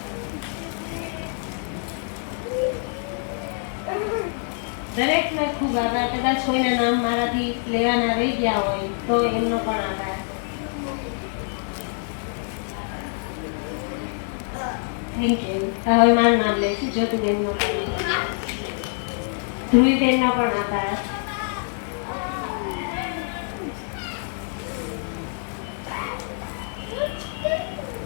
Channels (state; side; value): silent; right; 58 dB below the other